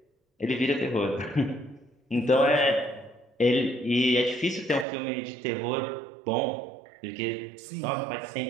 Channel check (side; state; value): left; drops out; at 4.9 s